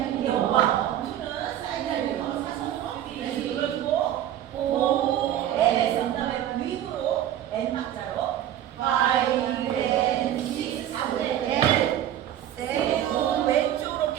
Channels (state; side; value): quieter; left; 11.5 dB